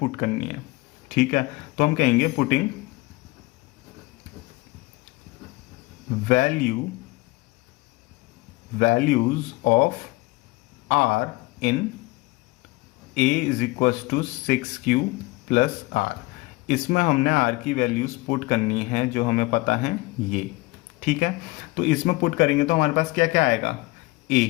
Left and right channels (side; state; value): right; quieter; 22.3 dB